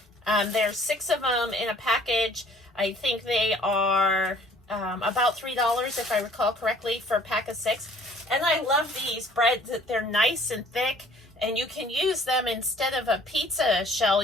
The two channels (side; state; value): both; normal; correlation 0.55